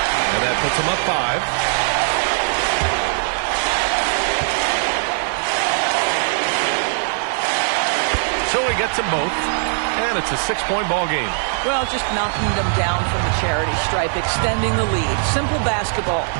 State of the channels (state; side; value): silent; left; 66 dB below the other